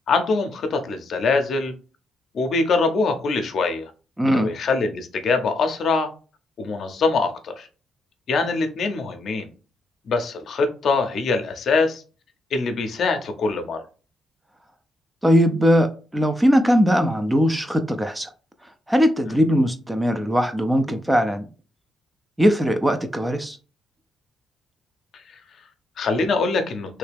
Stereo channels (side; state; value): both; normal; correlation 0.81